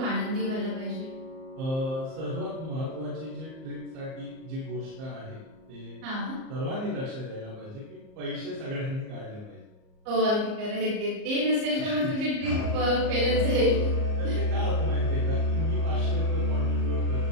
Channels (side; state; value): left; late; 38 ms